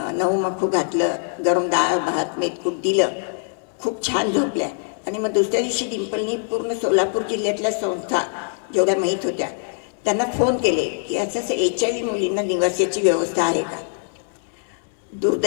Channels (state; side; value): silent; right; 64 dB below the other